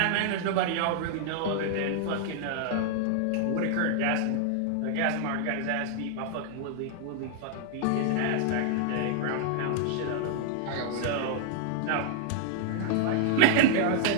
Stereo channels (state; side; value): different; both; correlation 0.00